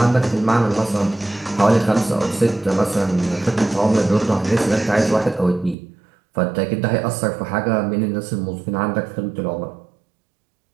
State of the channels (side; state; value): left; drops out; at 5.8 s